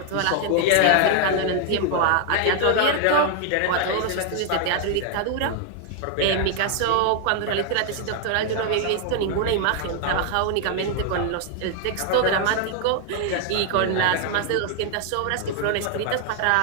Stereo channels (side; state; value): both; different; correlation 0.00